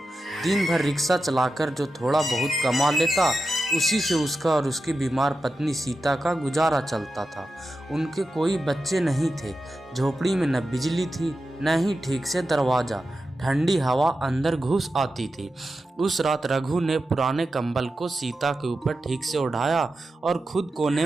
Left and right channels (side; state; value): both; normal; correlation 0.90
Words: दिन भर रिक्शा चलाकर जो थोड़ा बहुत कमा लेता, उसी से उसका और उसकी बीमार पत्नी सीता का गुजारा चलता था। उनके कोई बच्चे नहीं थे। झोपड़ी में न बिजली थी, न ही ठीक से दरवाज़ा। ठंडी हवा अंदर घुस आती थी। उस रात रघु ने पुराने कंबल को सीता के ऊपर ठीक से उठाया और खुद कोने